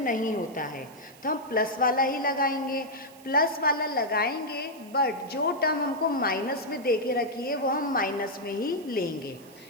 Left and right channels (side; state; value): right; noise; hiss, 23 dB below the sound